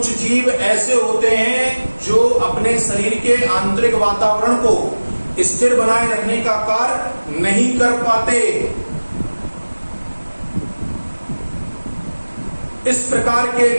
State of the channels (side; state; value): both; inverted; correlation -1.00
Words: जीव ऐसे होते हैं जो अपने शरीर के आंतरिक वातावरण को स्थिर बनाए रखने का कार्य नहीं कर पाते। इस प्रकार